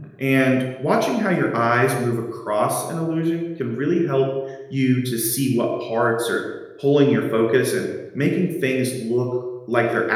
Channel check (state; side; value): identical; both; correlation 1.00